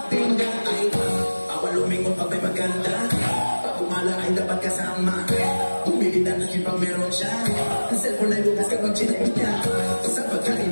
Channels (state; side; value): inverted; both; correlation -1.00